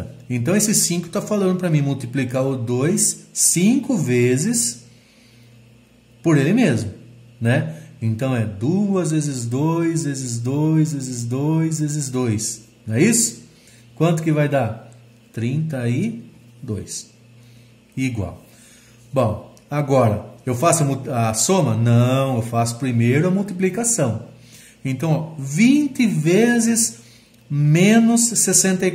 Então, esse 5 está falando para mim multiplicar o 2 5 vezes por ele mesmo, né? Então, é 2 vezes 2, vezes 2, vezes 2, vezes 2. Não é isso? Quanto que vai dar? 32. Igual. Bom, agora, eu faço a soma? Não, eu faço primeiro a multiplicação. Então, ó, 20 vezes menos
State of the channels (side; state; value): both; identical; correlation 1.00